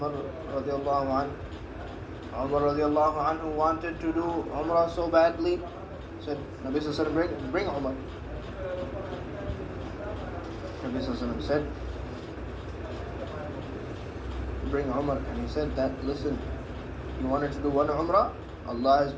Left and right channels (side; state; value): both; identical; correlation 1.00